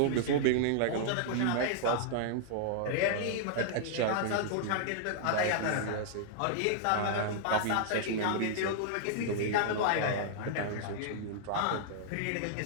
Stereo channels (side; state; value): both; different; correlation -0.01